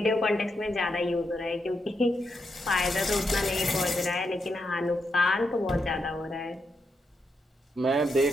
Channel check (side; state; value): both; normal; correlation 0.83